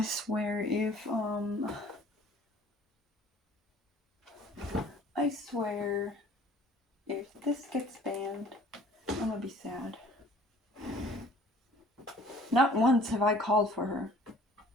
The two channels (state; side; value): normal; both; correlation 0.52